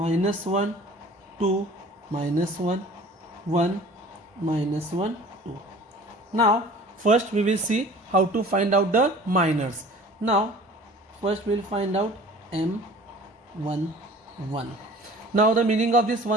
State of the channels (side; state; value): both; normal; correlation 0.45